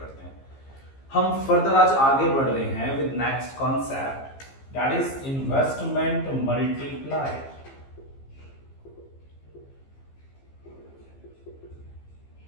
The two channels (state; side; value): late; right; 15 ms